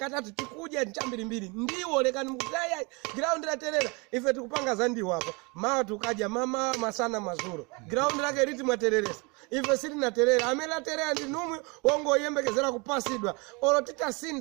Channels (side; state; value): left; quieter; 29.0 dB